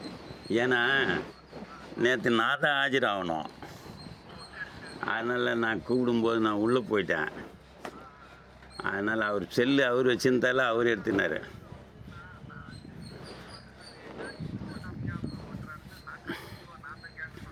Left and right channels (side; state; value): both; identical; correlation 1.00